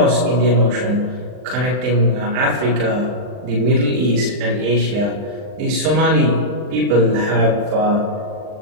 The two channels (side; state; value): left; late; 39 ms